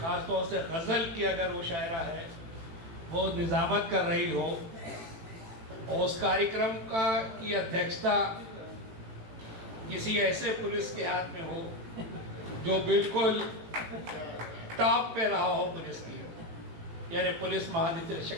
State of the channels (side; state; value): left; late; 18 ms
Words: तौर से गज़ल की अगर वो शायरा है वो निज़ामत कर रही हो और उस कार्यक्रम का की अध्यक्षता किसी ऐसे पुलिस के हाथ में हो जो बिल्कुल टॉप पे रहा हो पुलिस की, यानी पुलिस